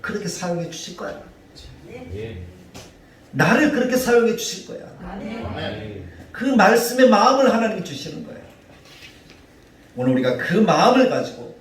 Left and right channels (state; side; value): identical; both; correlation 1.00